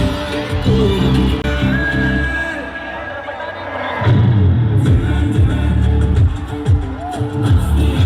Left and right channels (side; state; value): both; identical; correlation 1.00